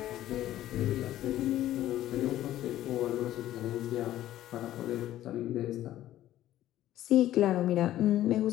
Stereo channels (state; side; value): quieter; right; 13.5 dB